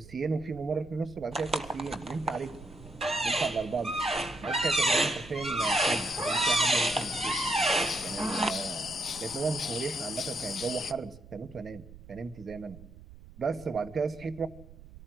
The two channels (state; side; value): noise; right; rumble, 19 dB below the sound